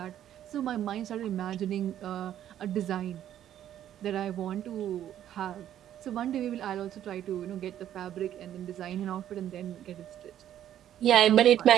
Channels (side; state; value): left; quieter; 11.1 dB